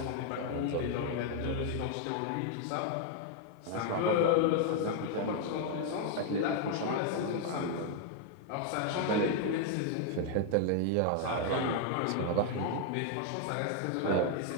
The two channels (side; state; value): both; different; correlation 0.00